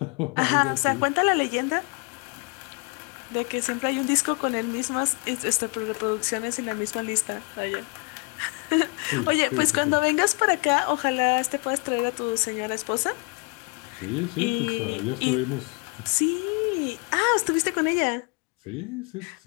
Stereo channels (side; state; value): right; quieter; 32.8 dB